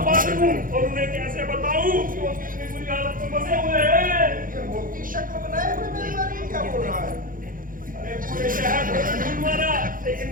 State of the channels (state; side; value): late; left; 0.40 ms